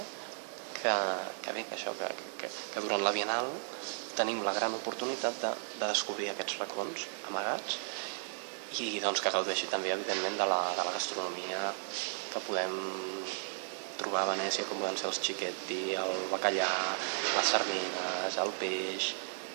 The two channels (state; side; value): silent; left; digital silence